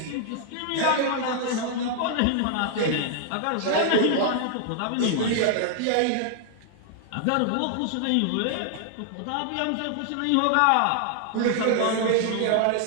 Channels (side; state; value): both; different; correlation 0.00